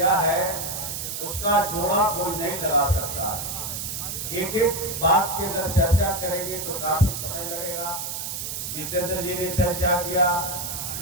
है उसका जोड़ा कोई नहीं लगा सकता। एक एक बात की अगर चर्चा करेंगे तो काफी समय लगेगा। जितेंद्र जी ने चर्चा किया,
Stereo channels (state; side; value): noise; right; hiss, 5 dB below the sound